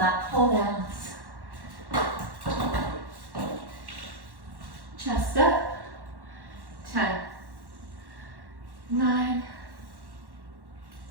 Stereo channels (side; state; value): left; late; 1.1 ms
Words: pull downs. Chest up. 10, 9,